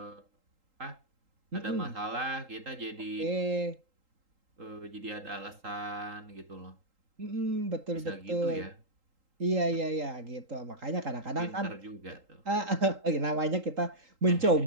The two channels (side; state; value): left; late; 3.8 ms